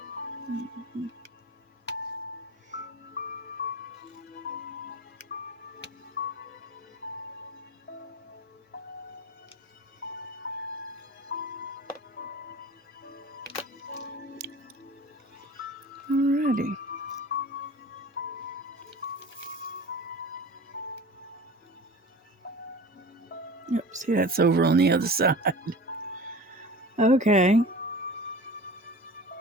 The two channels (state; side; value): normal; both; correlation 0.37